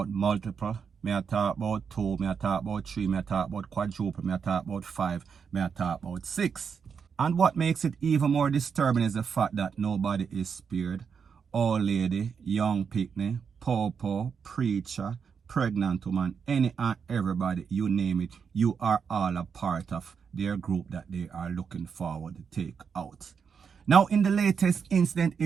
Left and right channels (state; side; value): quieter; left; 6.4 dB